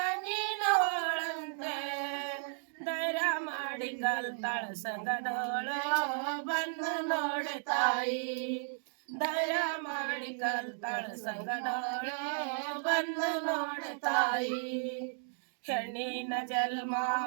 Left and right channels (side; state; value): left; silent; digital silence